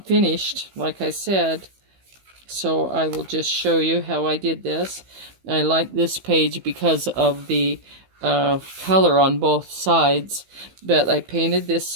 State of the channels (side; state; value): left; late; 15 ms